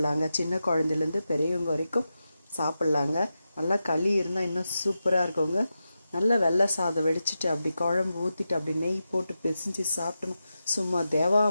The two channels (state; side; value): inverted; both; correlation -0.90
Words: சின்ன குழந்தைலேருந்து பெரியவங்க வரைக்கும் சாப்பிட்லாங்க. நல்லா களி இருந்தால் இன்னும் சூப்பராக இருக்குங்க. நல்லா வெள்ளை சாதம் வெடிச்சிட்டு அப்படி குழம்பு ஊற்றிட்டு அப்படி நெய் போட்டு பிசைஞ்சு சாப்பிட்டோம். சும்மா